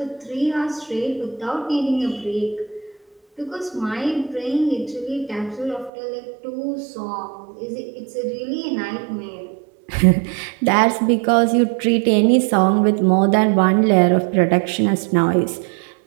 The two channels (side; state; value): left; drops out; at 5.9 s